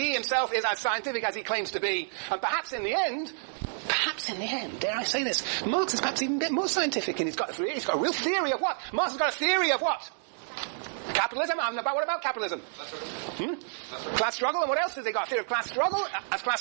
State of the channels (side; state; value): left; silent; digital silence